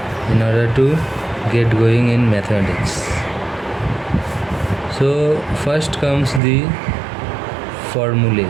in order to get going in mathematics. So first comes the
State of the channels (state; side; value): drops out; left; at 6.4 s